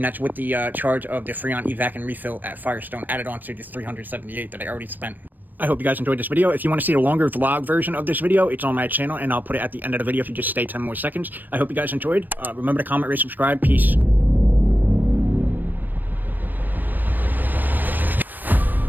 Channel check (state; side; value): late; left; 0.090 ms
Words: that's with the charge of the Freon evac and refill at Firestone added on to the $378 that I already spent. I hope you guys enjoyed this video. If you want to see a longer vlog version of this video, it's on my channel, and I'll put it at the end of the video if you just stay 10 more seconds. I hope you guys enjoyed. Remember to comment, rate, subscribe. Peace.